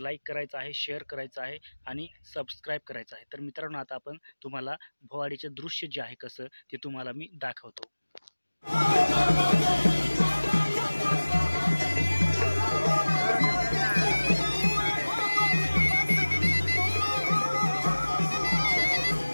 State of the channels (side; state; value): both; inverted; correlation -1.00